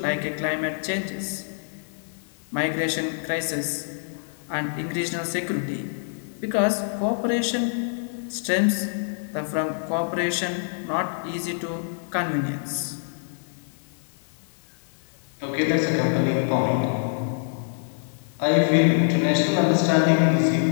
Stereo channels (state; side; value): silent; right; digital silence